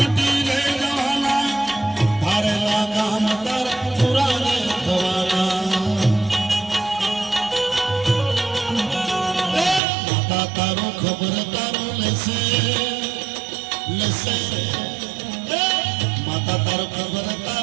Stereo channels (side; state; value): left; drops out; at 9.8 s